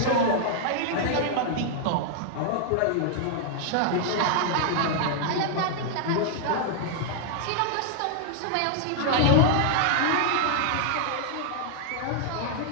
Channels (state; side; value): different; both; correlation -0.01